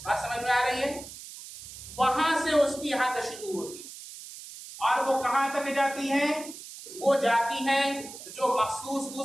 بات سمجھ میں آ رہی ہے؟ وہاں سے اس کی حد شروع ہوتی ہے. اور وہ کہاں تک جاتی ہے؟ وہ جاتی ہے جو مخصوص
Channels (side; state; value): right; noise; hiss, 14 dB below the sound